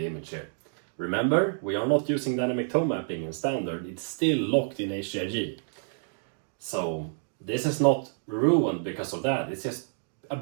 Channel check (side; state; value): left; silent; digital silence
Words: image here. Remember, we are not using dynamic tone mapping in standard, it's still locked in HDR. So this is not ruined because of that, it's just a